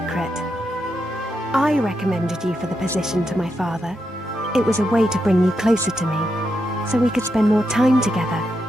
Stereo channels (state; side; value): normal; both; correlation 0.84